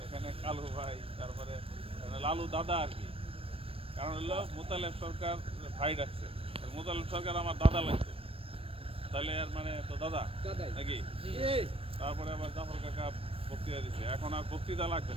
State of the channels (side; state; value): left; late; 0.28 ms